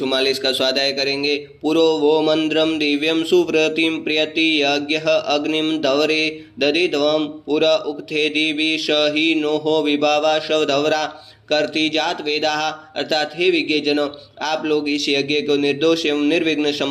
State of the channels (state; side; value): identical; both; correlation 1.00